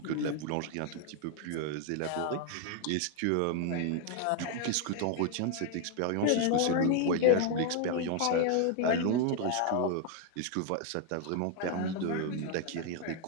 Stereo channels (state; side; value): different; both; correlation 0.01